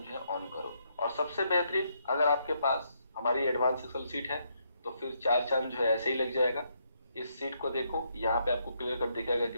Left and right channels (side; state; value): both; inverted; correlation -0.76